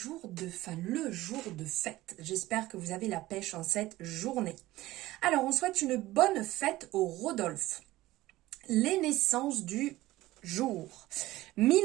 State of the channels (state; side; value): quieter; left; 17.1 dB